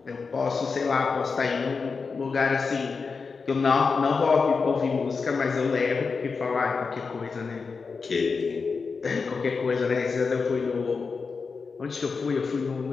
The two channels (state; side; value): quieter; right; 4.9 dB